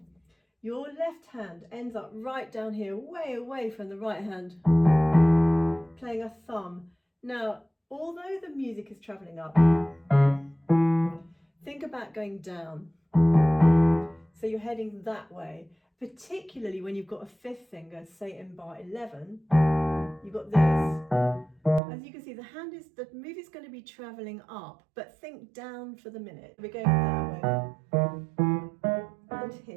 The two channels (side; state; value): left; drops out; at 21.8 s